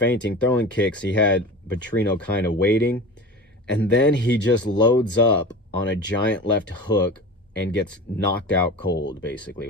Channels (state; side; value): normal; both; correlation 0.33